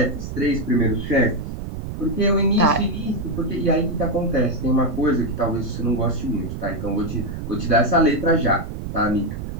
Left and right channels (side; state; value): right; noise; rumble, 7 dB below the sound